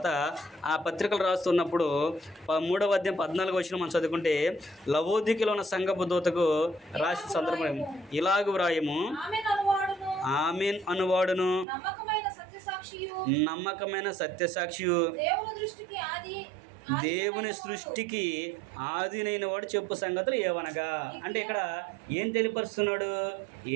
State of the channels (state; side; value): drops out; left; at 11.7 s